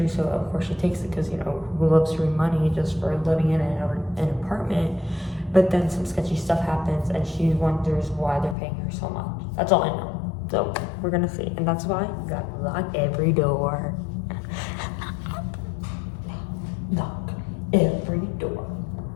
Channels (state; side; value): drops out; right; at 8.6 s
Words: So of course she takes it because you know who loves to money just for living in an apartment. But then some sketchy stuff happens, and she wonders why they're paying her so much. That's all I know. So we're gonna see, and that's why you gotta lock every door. Lock every door.